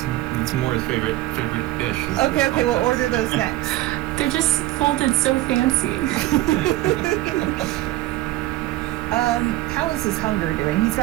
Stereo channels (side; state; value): left; quieter; 16.7 dB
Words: Moore's favorite dish. is Okay, the okay, we'll cold cuts. order those next. They're just folded so fancy. How is his hunger doing? He's